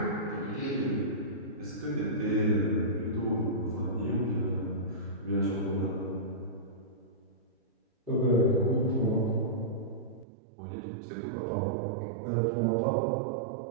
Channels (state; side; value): drops out; left; at 10.2 s